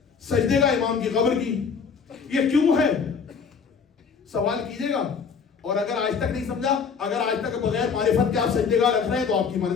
سجدے کا امام کی قبر کی. یہ کیوں ہے سوال کیجئے گا. اور اگر آج تک نہیں سمجھا, اگر آج تک بغیر معرفت کے آپ سجدے کا رکھ رہے ہیں تو آپ کی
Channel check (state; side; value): quieter; right; 5.9 dB